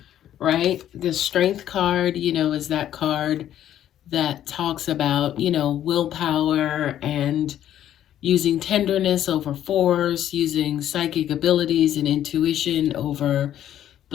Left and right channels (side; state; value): right; quieter; 11.3 dB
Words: right? The Strength card, is that card that talks about, willpower and using tenderness over force, using psychic abilities and intuition over